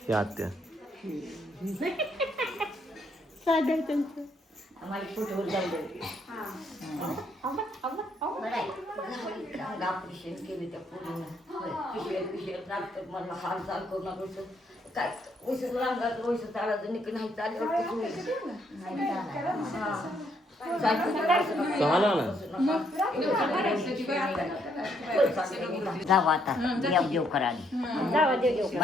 हे आत्या आम्हाला फोटोवर जाऊ ऑपरेशन केले त्या पोरीनं पिशव्यात लागतात मला हालचाल करू नका काय वैसे रांगात वैसे चालायचं निक नाही चाललं जाऊ आता देव देव करायला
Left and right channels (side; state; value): both; normal; correlation 0.72